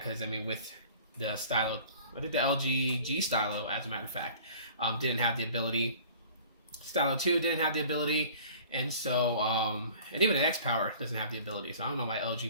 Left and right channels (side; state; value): both; inverted; correlation -0.47